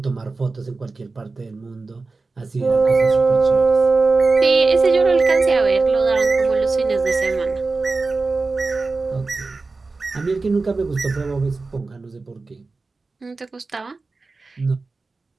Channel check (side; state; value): left; quieter; 3.8 dB